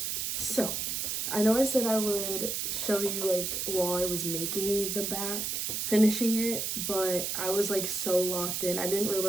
so I know I said I would show you like while I was making the back, finishing it, but I was like so locked in. I didn't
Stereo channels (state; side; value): noise; right; hiss, 1 dB below the sound